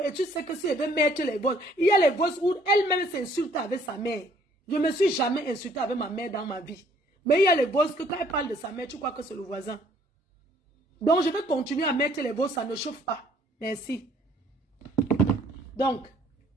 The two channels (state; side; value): normal; both; correlation 0.61